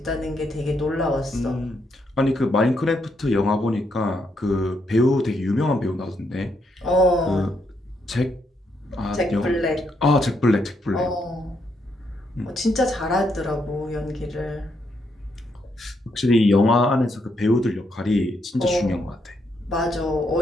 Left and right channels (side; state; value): both; normal; correlation 0.77